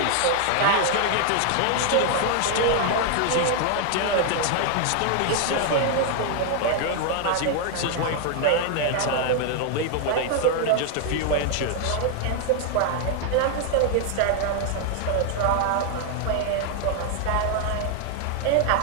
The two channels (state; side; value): different; both; correlation 0.00